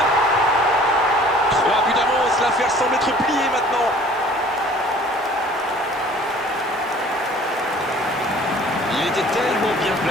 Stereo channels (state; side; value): normal; both; correlation 0.50